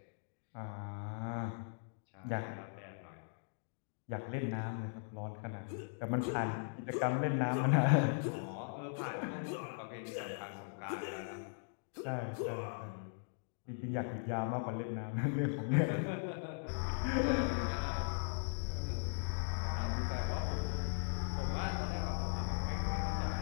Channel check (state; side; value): silent; right; digital silence